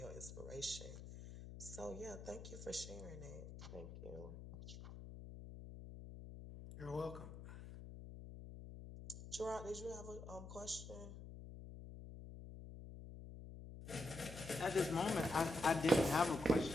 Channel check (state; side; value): noise; left; hum, 11 dB below the sound